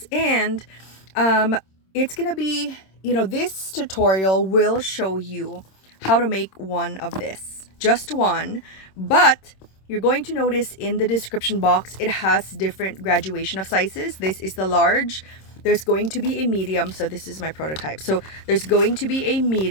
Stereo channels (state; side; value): late; right; 26 ms